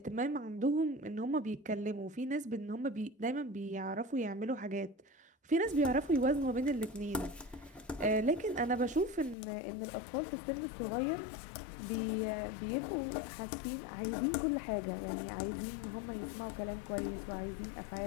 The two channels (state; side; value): drops out; right; at 9.3 s